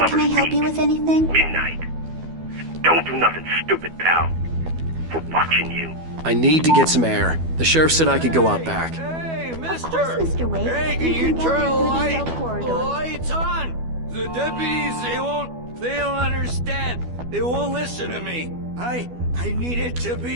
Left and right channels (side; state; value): left; late; 12 ms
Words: Lover's can I help Peak. you with anything? Midnight. Don't do nothing stupid, pal. We're watching you. I need to get some air. The sheriff said I could go out back. Of course, Mr. Wade. Hey, can you can get turn there the through light? cell corridor. Lights on! The deputies, they don't understand. They won't listen to me. I need it to